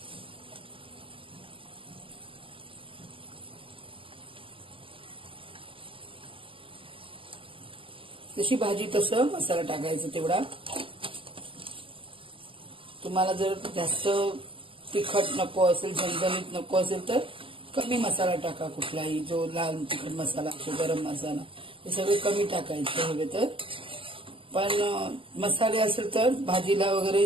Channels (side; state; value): left; late; 0.25 ms